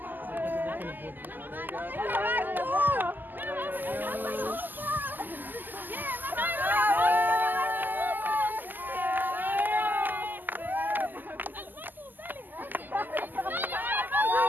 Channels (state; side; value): late; left; 0.087 ms